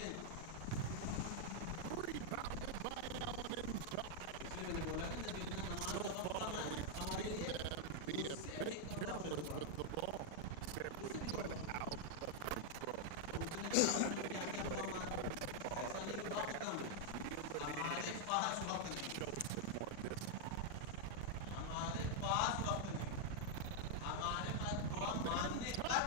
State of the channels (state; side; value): different; both; correlation 0.00